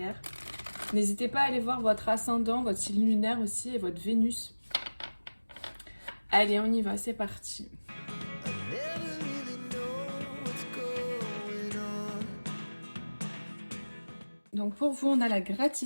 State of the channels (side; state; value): both; inverted; correlation -1.00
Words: N'hésitez pas à aller voir votre ascendant, votre signe lunaire aussi et votre Vénus. Allez on y va, c'est parti. Donc pour vous on a la